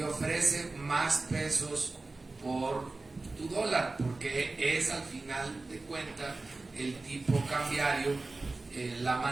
ofrece más pesos por tu dólar? Porque es al final de cuentas el tipo cambiario, la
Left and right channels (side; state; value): left; quieter; 3.4 dB